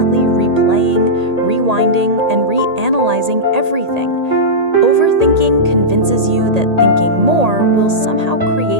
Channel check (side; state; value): left; late; 1.8 ms